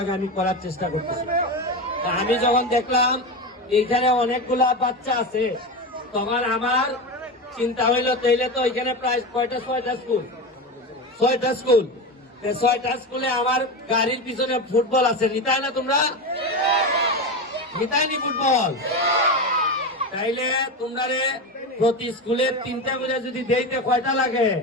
আমি করার চেষ্টা করতেছি। আমি যখন দেখলাম এইখানে অনেকগুলা বাচ্চা আছে, তখন আমার চিন্তা হইলো তাইলে তো এখানে প্রায় ছয়টা স্কুলে আমার গাড়ির পিছনে ফুটবল আছে, নিতাই না তোমরা? নিতাইনি ফুটবল? তাইলে তোমরা প্রতি স্কুলে 3টা করে যদি দেইতে কয়টা লাগে?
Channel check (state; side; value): normal; both; correlation 0.20